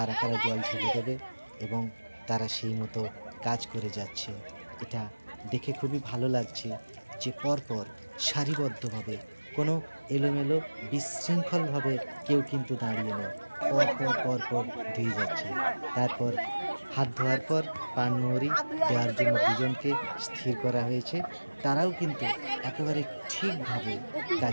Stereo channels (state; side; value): inverted; both; correlation -1.00